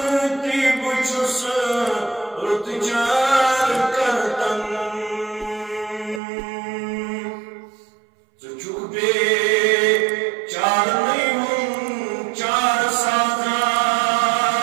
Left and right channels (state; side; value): drops out; left; at 6.2 s